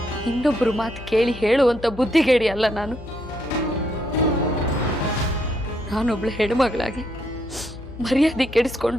ಇನ್ನೊಬ್ರು ಮಾತು ಕೇಳಿ ಹೇಳುವಂತ ಬುದ್ಧಿಗೇಡಿ ಅಲ್ಲ ನಾನು. ನಾನೊಬ್ಳು ಹೆಣ್ಮಗಳಾಗಿ ಮರ್ಯಾದೆ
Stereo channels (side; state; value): left; noise; hum, 14 dB below the sound